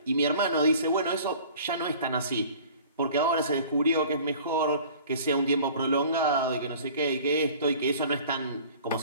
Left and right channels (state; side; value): inverted; both; correlation -0.47